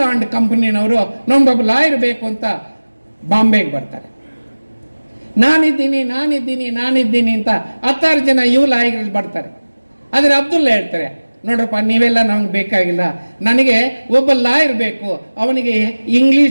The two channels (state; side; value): inverted; both; correlation -1.00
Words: ಅಂಡ್ ಕಂಪನಿನವರು, ನಮ್ಗೊಬ್ಬ ಲಾಯರ್ ಬೇಕು ಅಂತ ಬಾಂಬೆಗೆ ಬರ್ತಾರೆ. ನಾನಿದ್ದೀನಿ ಅಂತ 10 ಜನ ಲಾಯರ್ಗಳು ಬರ್ತಾರೆ. ಆದರೆ ಅಬ್ದುಲ್ಲಾ ಹೇಳ್ತಾರೆ, ನೋಡ್ರಪ್ಪ ನೀವೆಲ್ಲ ನಮ್ಗೆ ಬೇಕಾಗಿಲ್ಲ, ನನಗೆ ಒಬ್ಬ ಲಾಯರ್ ಬೇಕು, ಅವನಿಗೆ